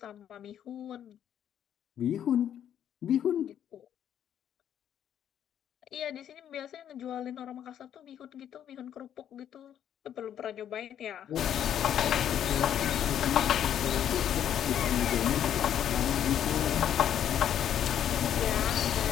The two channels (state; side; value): quieter; right; 9.9 dB